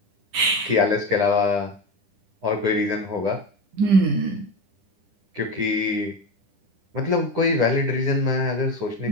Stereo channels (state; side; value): late; left; 10 ms